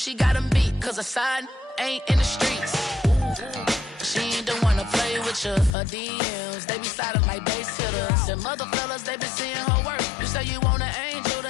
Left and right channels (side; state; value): right; drops out; at 5.7 s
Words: got him beat. Cause her side ain't in the streets. She ain't the one to play with you. Her DMs, they be sliding like base hitters. Them other fellas, they been seeing her work. You say you want an angel,